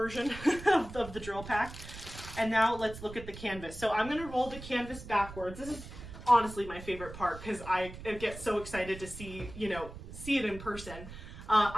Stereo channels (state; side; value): noise; right; rumble, 13 dB below the sound